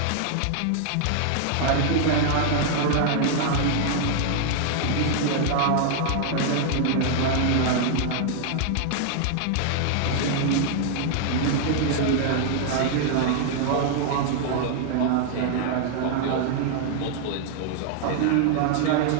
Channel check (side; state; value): both; different; correlation -0.01